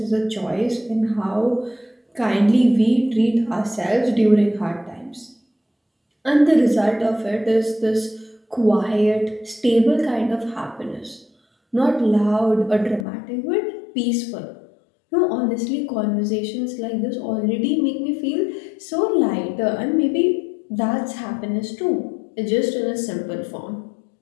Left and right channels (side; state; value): right; drops out; at 13.1 s